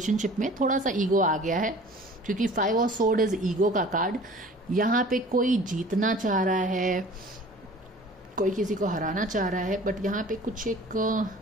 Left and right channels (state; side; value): normal; both; correlation 0.46